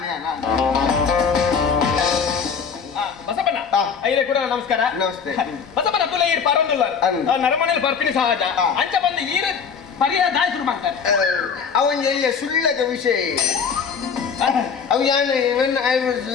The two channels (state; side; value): quieter; right; 6.3 dB